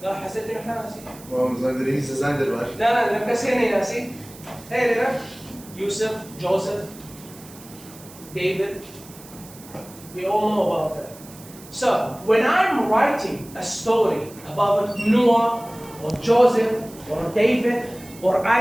لا حسيت إنه إحنا ناسي. لا مكسرني ناسي. Hey there, Yusuf, Joseph, David. We all know about that. So when I'm writing a story about Noah or Joseph or David or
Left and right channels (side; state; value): right; noise; hiss, 20 dB below the sound